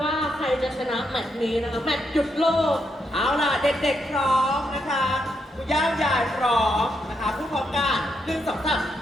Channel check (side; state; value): both; normal; correlation 0.80